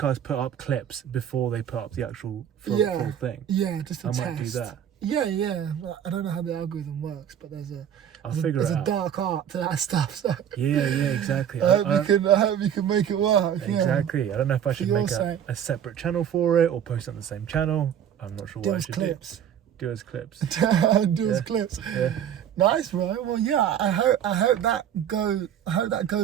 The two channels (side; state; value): left; quieter; 9.3 dB